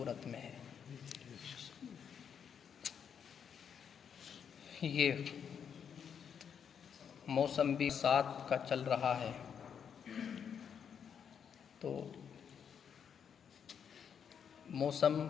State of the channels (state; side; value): quieter; right; 7.6 dB